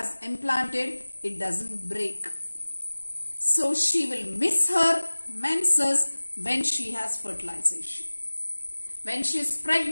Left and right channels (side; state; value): both; inverted; correlation -1.00